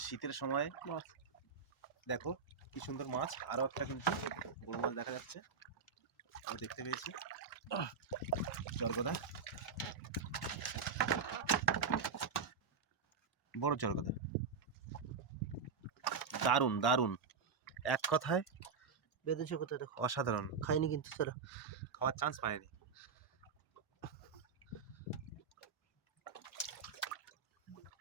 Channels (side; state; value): left; quieter; 5.7 dB